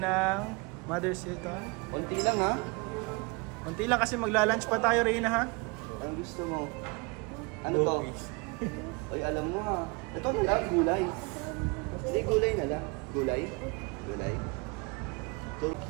ng Mother Seton. Konti lang ha? Konti lang kasi magla-lunch pa tayo Reyna ha? Ang gusto mo? Ano to? Oy, alam mo ha. Ito na lang, gulay. Hindi, gulay na lang. Gulay? Gulay. Ito.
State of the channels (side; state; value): left; quieter; 29.1 dB